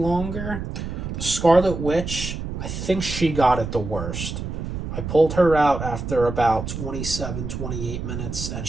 The Scarlet Witch, I think she got it the worst. I pulled her out after about 27, 28 minutes, and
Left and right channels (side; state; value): right; noise; rumble, 6 dB below the sound